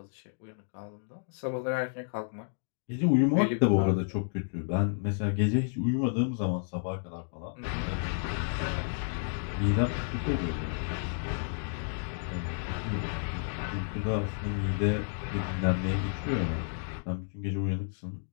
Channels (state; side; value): silent; right; digital silence